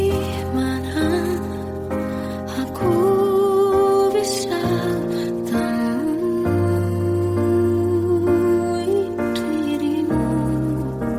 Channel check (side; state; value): both; identical; correlation 1.00